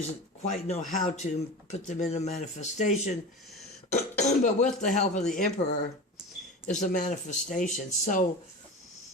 quite know how to put them into manifestation. But with the help of the Emperor is a manifestation. So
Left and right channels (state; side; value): normal; both; correlation 0.30